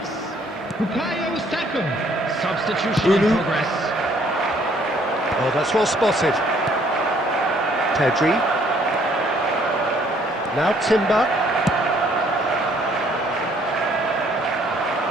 Bukayo Saka. Substitution in progress. Oh, that's well spotted. Pedri. Now Timber.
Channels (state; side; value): normal; both; correlation 0.63